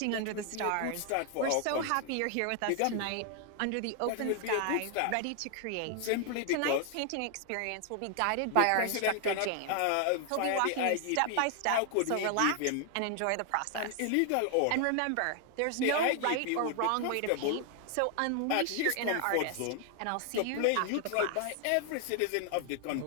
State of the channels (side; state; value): both; different; correlation 0.00